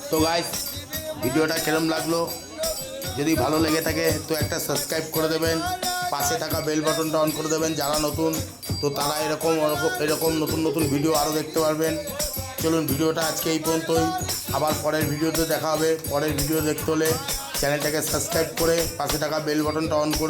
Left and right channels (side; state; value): both; identical; correlation 1.00